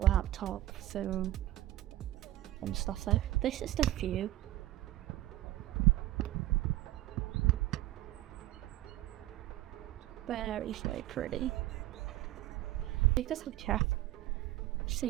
laptop, phone, and stuff there. This is the view. Very pretty. I think this will check.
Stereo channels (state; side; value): quieter; left; 15.3 dB